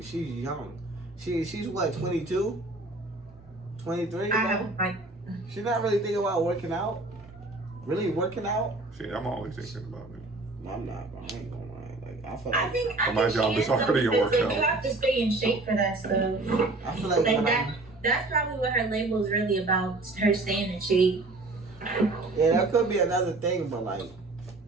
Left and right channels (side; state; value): left; quieter; 3.0 dB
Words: She's what, 22? 23, bro? She's not really thinking about working out. Really working out? Shit, I'm always thinking about it. I'm not, bro. I ain't gonna lie. Like I feel I like think my job she is already a though, because workout. you have to stay in shape for that stuff. I feel like Like when that. That's probably what her label is really about. Her staying in shape. yeah, that could be another thing, but like